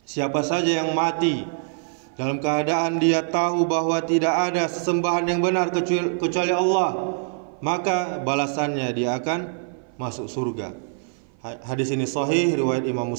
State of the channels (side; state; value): left; silent; 57 dB below the other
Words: Siapa saja yang mati dalam keadaan dia tahu bahwa tidak ada sesembahan yang benar kecuali Allah, maka balasannya dia akan masuk surga. Hadis ini sahih, riwayat Imam